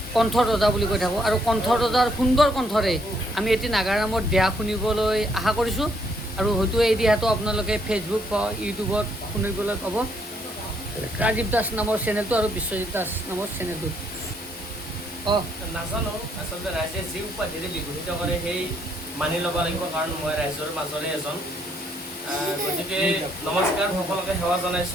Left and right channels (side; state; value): both; normal; correlation 0.71